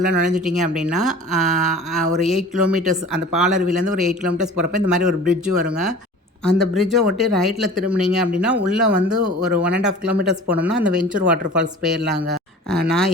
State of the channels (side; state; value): both; normal; correlation 0.42